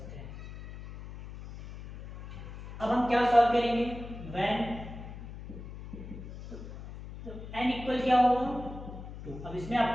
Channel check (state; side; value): noise; left; hum, 12 dB below the sound